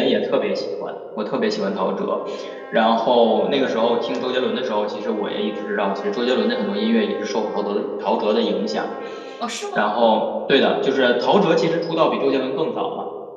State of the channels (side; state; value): both; identical; correlation 1.00